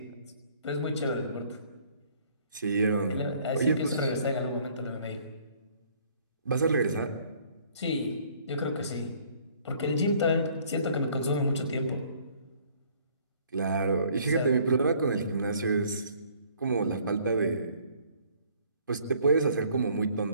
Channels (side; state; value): both; inverted; correlation -0.59